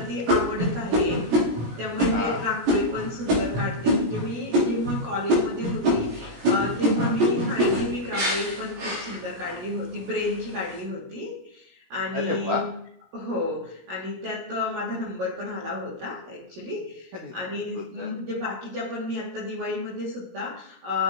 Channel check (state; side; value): late; left; 17 ms